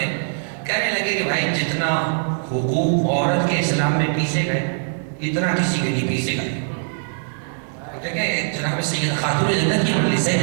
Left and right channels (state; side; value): silent; left; 64 dB below the other